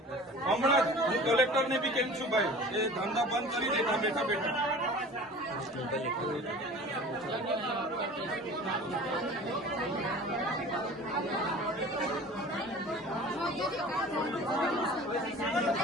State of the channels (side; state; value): both; normal; correlation 0.41